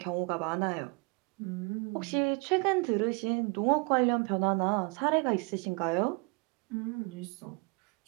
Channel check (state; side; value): quieter; left; 30.8 dB